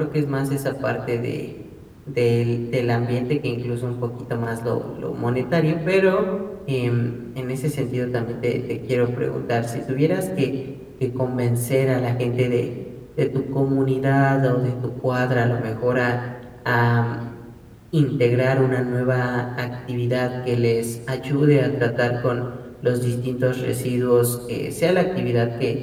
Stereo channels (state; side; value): identical; both; correlation 1.00